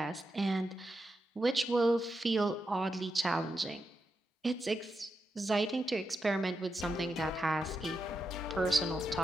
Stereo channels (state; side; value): normal; both; correlation 0.87